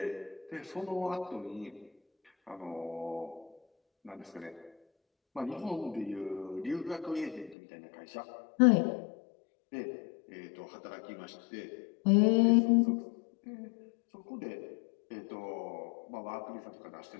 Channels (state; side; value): drops out; right; at 7.6 s